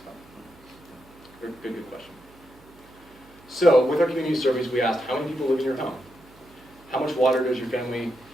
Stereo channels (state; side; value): noise; right; hum, 26 dB below the sound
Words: good question. So with our community surveys, we asked, how many people live in your home? How much water does your family